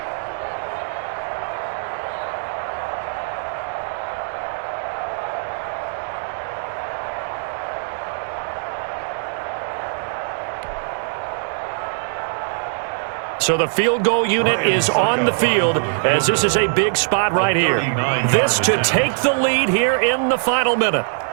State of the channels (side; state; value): left; silent; 65 dB below the other